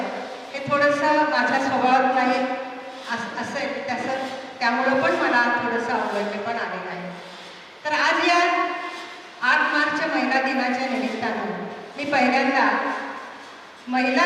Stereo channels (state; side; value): identical; both; correlation 1.00